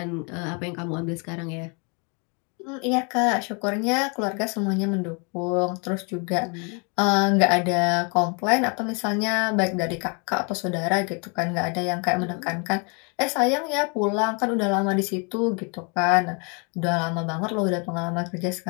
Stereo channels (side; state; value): right; quieter; 34.4 dB